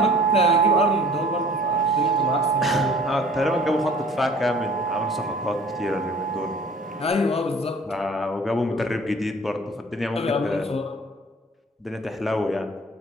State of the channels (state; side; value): normal; both; correlation 0.49